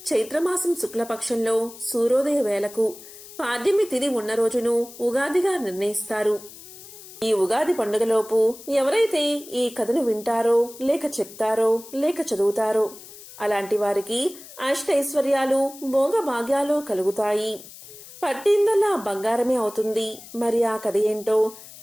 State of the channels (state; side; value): noise; left; hiss, 17 dB below the sound